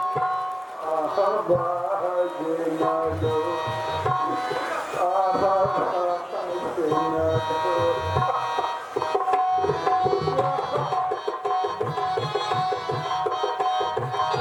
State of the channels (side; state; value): both; identical; correlation 1.00